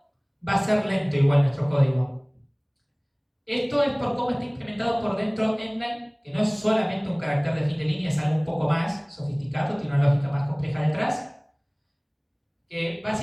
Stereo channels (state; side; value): identical; both; correlation 1.00